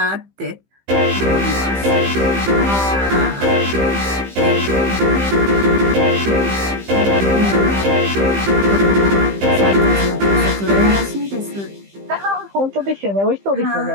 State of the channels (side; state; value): left; late; 15 ms